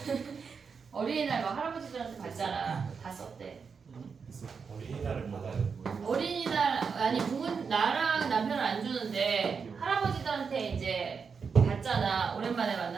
어린이날 막 할아버지들한테 받잖아. 다 썼대. 어린이날을 받아요. 어린이날 아니 부모 나랑 남편은 안 주는데 할아버지들한테 이제 받잖아. 오랜만에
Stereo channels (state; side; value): quieter; left; 5.7 dB